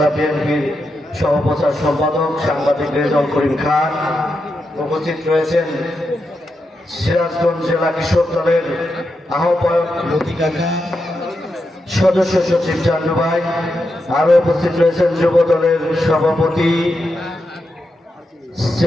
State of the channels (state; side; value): normal; both; correlation 0.86